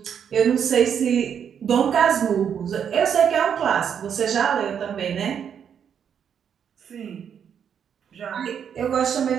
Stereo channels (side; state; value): left; quieter; 8.0 dB